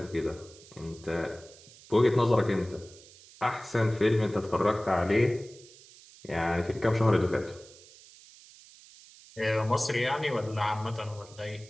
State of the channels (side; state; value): right; noise; hiss, 22 dB below the sound